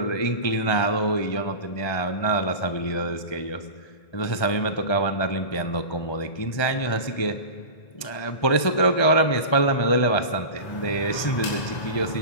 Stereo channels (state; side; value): late; right; 1.3 ms